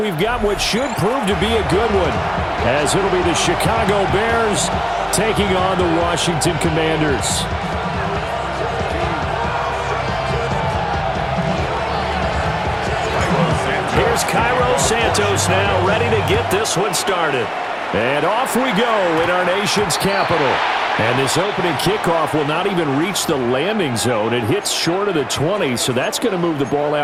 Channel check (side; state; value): both; identical; correlation 1.00